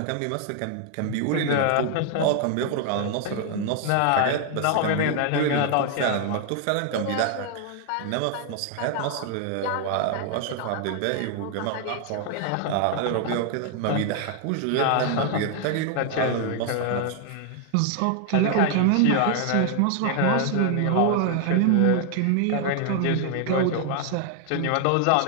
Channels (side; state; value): both; different; correlation 0.00